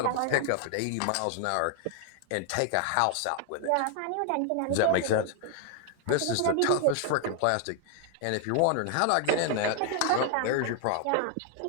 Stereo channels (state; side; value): different; both; correlation 0.00